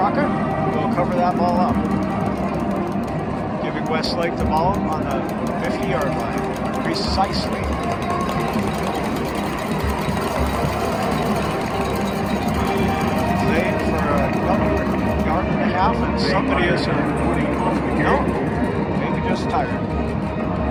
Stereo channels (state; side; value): identical; both; correlation 1.00